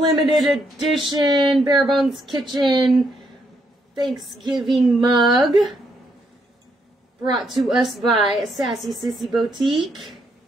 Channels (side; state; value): both; normal; correlation 0.75